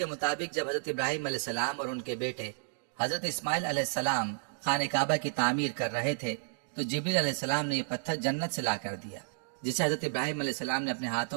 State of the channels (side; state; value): left; silent; digital silence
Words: مطابق جب حضرت ابراہیم علیہ السلام اور ان کے بیٹے حضرت اسماعیل علیہ السلام خانہ کعبہ کی تعمیر کر رہے تھے تو جبریل علیہ السلام نے یہ پتھر جنت سے لا کر دیا، جسے حضرت ابراہیم علیہ السلام نے اپنے